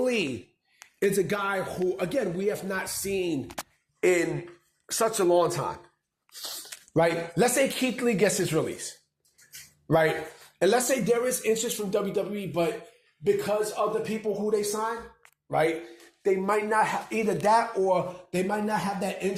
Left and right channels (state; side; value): identical; both; correlation 1.00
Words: is a guy who, again, we have not seen in such a long time, right? Let's say Keith Lee gets his release, right? And let's say there is interest from WWE, but because of the people who they sign, right, they might not have either that, or they might not have that